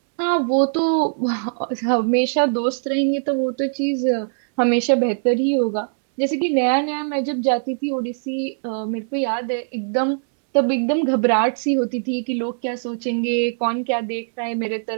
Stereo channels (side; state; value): left; silent; 65 dB below the other